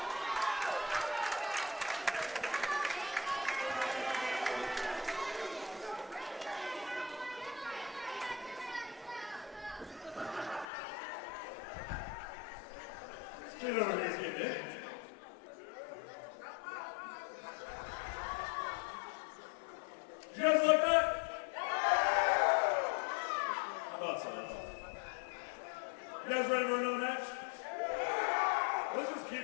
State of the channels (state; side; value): drops out; right; at 10.7 s